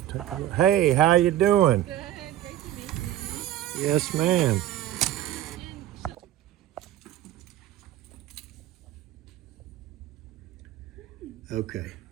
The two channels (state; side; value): quieter; left; 12.9 dB